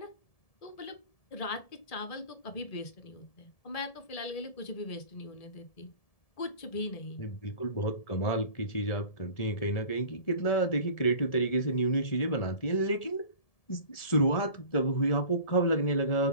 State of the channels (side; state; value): right; late; 1.7 ms